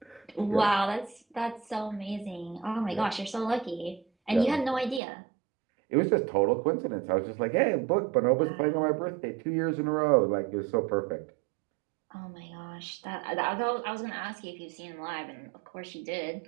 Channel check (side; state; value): left; drops out; at 5.0 s